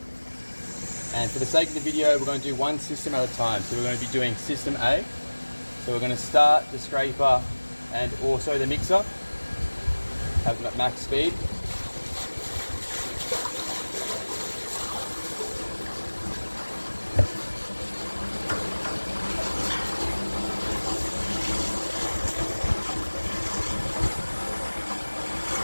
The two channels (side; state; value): both; inverted; correlation -1.00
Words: And for the sake of the video, we're going to do one system at a time. So we're going to be doing system A. So we're going to start the scraper and also the mixer, have them at max speed.